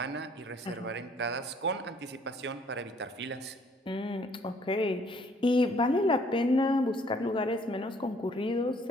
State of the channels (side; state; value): both; normal; correlation 0.62